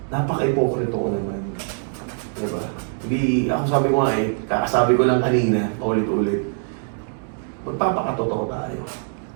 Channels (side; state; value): left; silent; digital silence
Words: napaka-hypocrite ko naman. Diba? Hindi, ako sabi ko nga kakasabi ko lang kanina, ulit-ulit, magpapakatotoo tayo.